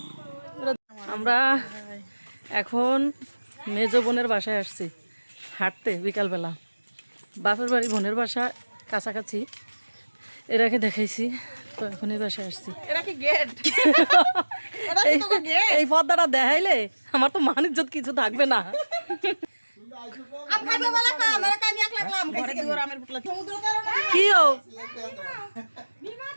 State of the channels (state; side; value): inverted; both; correlation -1.00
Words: আমরা এখন মেজ বোনের বাসায় আসছি হাঁটতে বিকালবেলা। বাপের বাড়ি বোনের বাসা কাছাকাছি, এরাকে দেখাইছি তো এখনই বাসায় আসছি। এই পর্দাটা দেখাইলে আমার তো মান ইজ্জত কিছু থাকবে না। কি ও